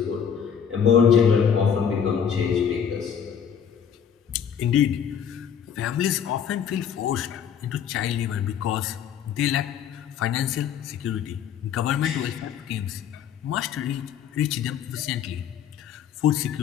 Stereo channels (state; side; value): quieter; right; 8.0 dB